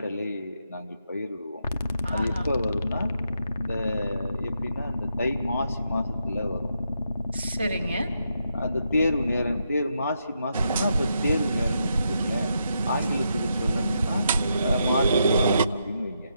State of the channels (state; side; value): inverted; both; correlation -0.81